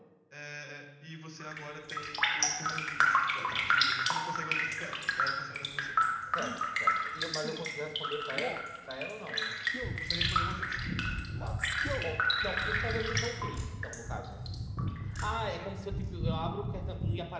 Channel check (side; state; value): both; identical; correlation 1.00